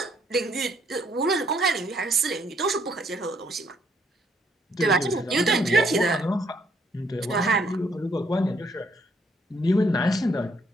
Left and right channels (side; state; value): both; normal; correlation 0.69